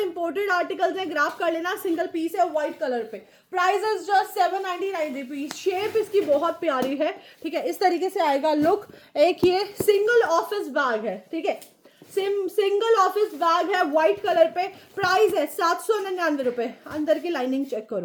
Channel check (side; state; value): both; identical; correlation 1.00